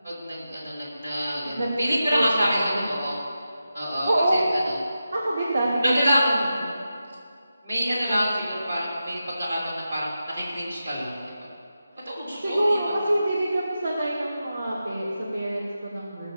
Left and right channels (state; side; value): inverted; both; correlation -0.90